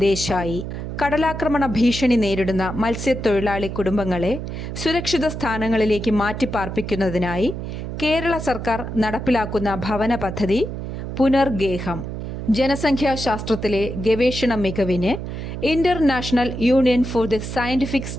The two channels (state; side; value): noise; right; hum, 6 dB below the sound